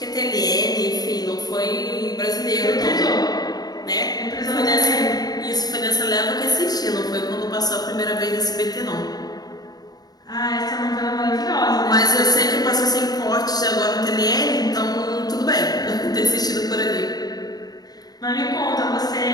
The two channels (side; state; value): right; late; 0.19 ms